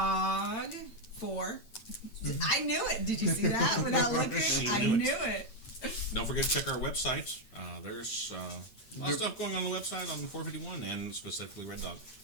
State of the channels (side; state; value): right; late; 8.7 ms